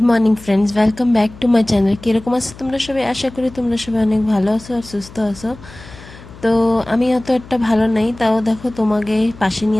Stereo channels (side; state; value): left; noise; hum, 19 dB below the sound